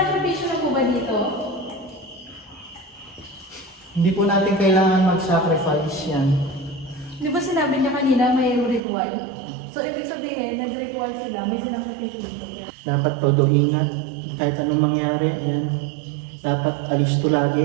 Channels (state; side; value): drops out; left; at 8.8 s